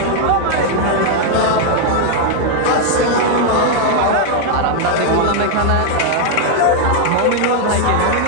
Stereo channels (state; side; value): different; both; correlation 0.00